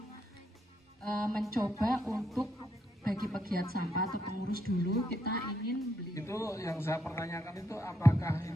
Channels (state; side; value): normal; both; correlation 0.77